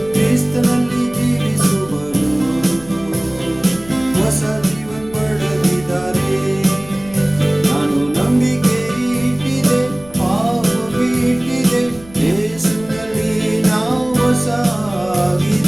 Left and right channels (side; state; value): left; noise; rumble, 20 dB below the sound